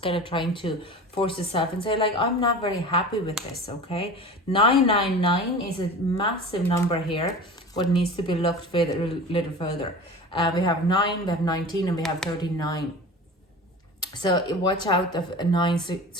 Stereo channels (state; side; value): normal; both; correlation 0.36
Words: kind of trying to force yourself and say like, I'm not very happy with this, okay? 999 is a massive number here, what needs to be looked at a little further. We have 9, we have 19, and we have 39. So watch out of 9